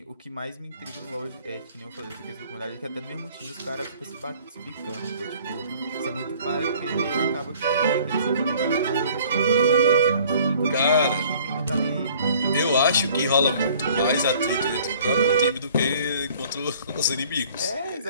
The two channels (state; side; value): inverted; both; correlation -0.53